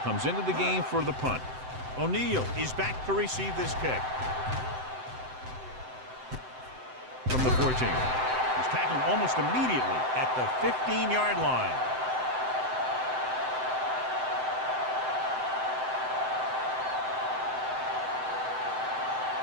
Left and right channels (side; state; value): left; late; 7.8 ms